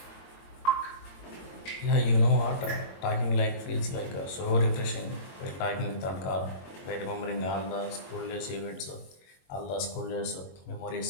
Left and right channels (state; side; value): late; right; 22 ms